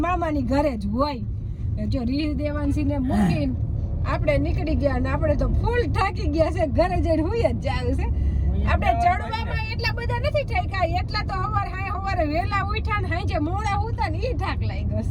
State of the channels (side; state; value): both; identical; correlation 1.00